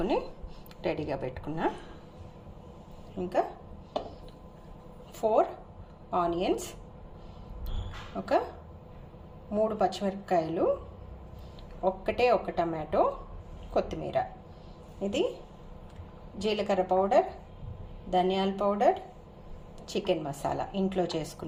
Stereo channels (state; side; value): identical; both; correlation 1.00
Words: రెడీగా పెట్టుకున్నా. ఇంకా 4 ఆనియన్స్, ఒక 3 పచ్చిమిరపకాయలు, ఒక టమాటో, కొత్తిమీర. ఇది జీలకర్ర పౌడర్, ధనియాల పౌడర్, చికెన్ మసాలా ఇంట్లో